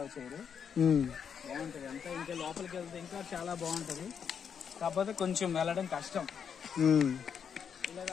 చేయరు. బాగుంటది అంతా. ఇంకా లోపలికి వెళ్తే ఇంకా చాలా బాగుంటది. కాకపోతే కొంచెం వెళ్ళడం కష్టం.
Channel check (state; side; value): quieter; right; 7.3 dB